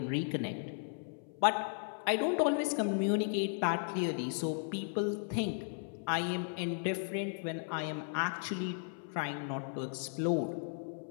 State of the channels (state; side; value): silent; right; 54 dB below the other